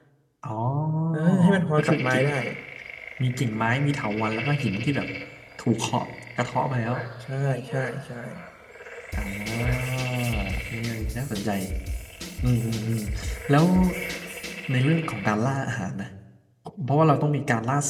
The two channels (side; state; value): both; identical; correlation 1.00